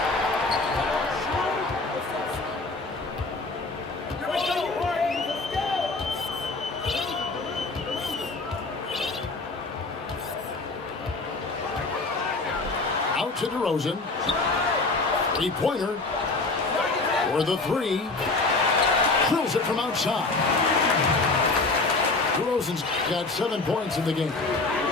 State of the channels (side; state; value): right; quieter; 3.5 dB